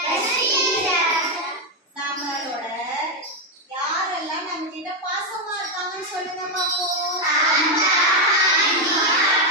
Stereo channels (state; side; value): normal; both; correlation 0.05